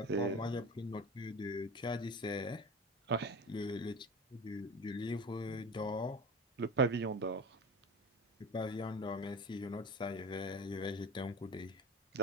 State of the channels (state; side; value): normal; both; correlation 0.33